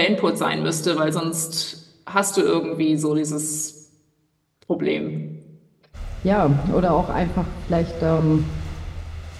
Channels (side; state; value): both; identical; correlation 1.00